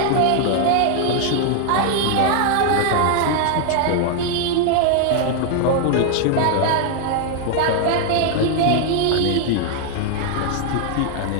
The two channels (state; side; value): different; both; correlation 0.00